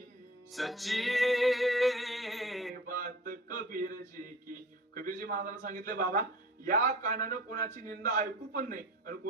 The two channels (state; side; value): normal; both; correlation 0.41